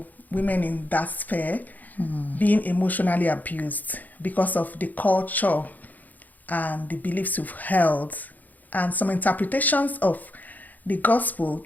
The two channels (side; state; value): right; late; 0.082 ms